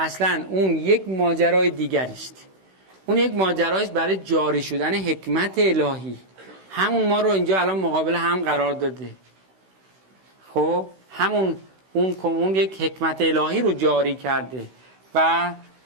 اون یک ماجرای دیگری است. اون یک ماجرایست برای جاری شدن حکمت الهی. همون ما رو اینجا الان مقابل هم قرار داده. خب همون اون یک حکمت الهی رو جاری کرده و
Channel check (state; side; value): late; left; 16 ms